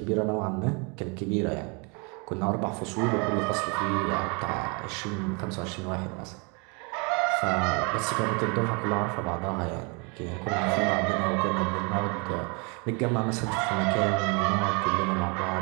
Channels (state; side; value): quieter; left; 32.0 dB